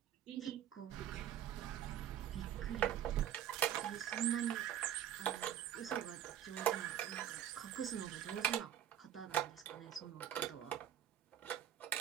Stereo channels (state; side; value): quieter; left; 10.5 dB